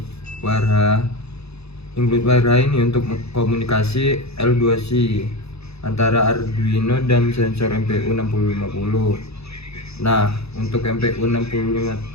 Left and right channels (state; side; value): late; right; 0.79 ms